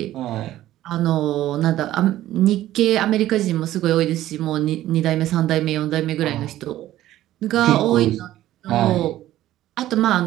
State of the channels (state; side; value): quieter; left; 14.1 dB